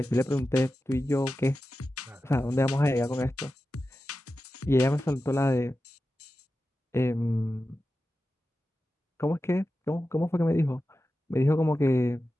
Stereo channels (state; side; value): normal; both; correlation 0.93